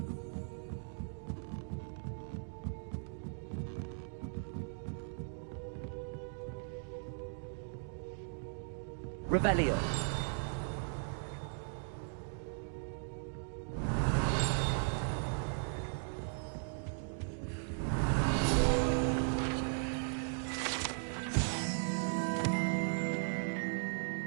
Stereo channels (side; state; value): left; silent; digital silence